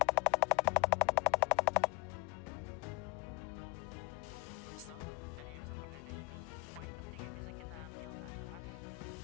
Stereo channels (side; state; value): right; quieter; 25.4 dB